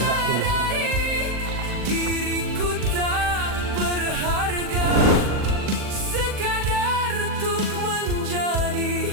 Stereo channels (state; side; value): late; left; 40 ms